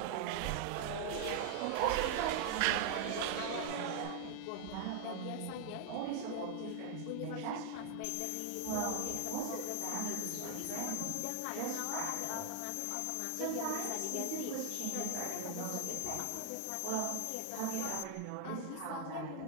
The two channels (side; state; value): both; different; correlation 0.00